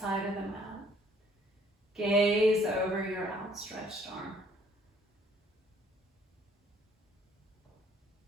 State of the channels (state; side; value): normal; both; correlation 0.61